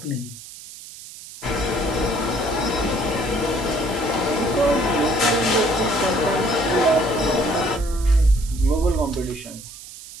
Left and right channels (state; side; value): noise; right; hiss, 15 dB below the sound